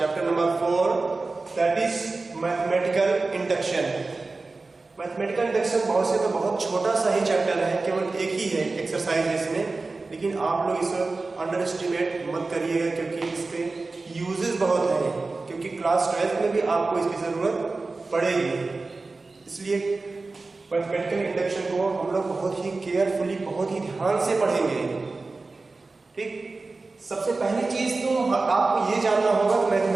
number 4 that is mathematical induction. Mathematical induction बहुत से तो बहुत छोटा सा ही चैप्टर है, केवल एक ही है एक्सरसाइज इसमें, लेकिन आप लोग इसे अंडर एस्टिमेट मत करिएगा क्योंकि इसके यूजेस बहुत हैं, क्योंकि क्लास 12th में भी आपको इसकी ज़रूरत पड़ेगी। इसलिए मैथमेटिकल इंडक्शन को हम लोग बहुत ही केयरफुली, बहुत ही ध्यान से पढ़ेंगे। ठीक, सबसे पहली चीज तो आपको ये जानना होगा कि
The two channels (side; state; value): left; quieter; 3.6 dB